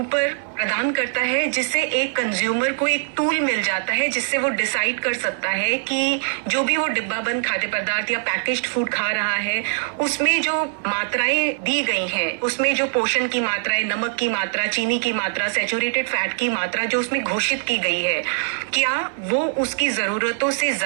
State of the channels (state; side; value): silent; left; digital silence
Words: प्रदान करता है, जिससे एक कंज्यूमर को एक टूल मिल जाता है जिससे वो डिसाइड कर सकता है कि जो भी वो डिब्बाबंद खाद्य पदार्थ या पैकेज्ड फूड खा रहा है उसमें जो मात्राएं दी गई हैं, उसमें जो पोषण की मात्राएं, नमक की मात्रा, चीनी की मात्रा, सैचुरेटेड फैट की मात्रा जो उसमें घोषित की गई है, क्या वो उसकी जरूरतों से